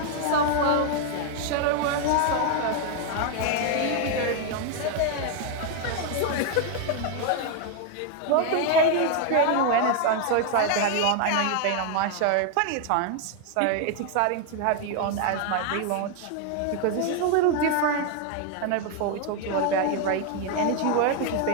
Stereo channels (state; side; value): different; both; correlation 0.00